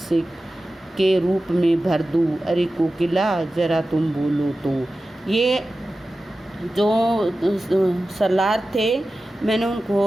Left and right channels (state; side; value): normal; both; correlation 0.95